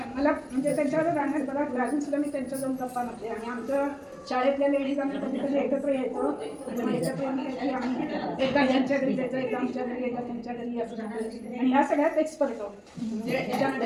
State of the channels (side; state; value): both; identical; correlation 1.00